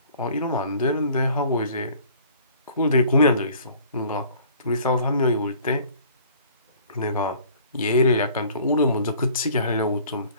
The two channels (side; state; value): both; inverted; correlation -0.52